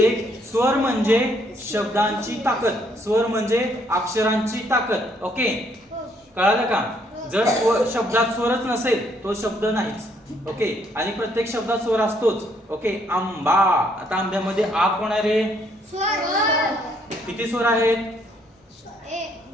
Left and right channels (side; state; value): both; normal; correlation 0.69